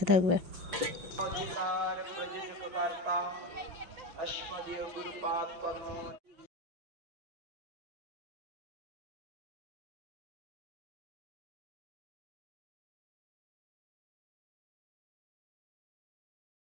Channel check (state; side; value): late; left; 6.1 ms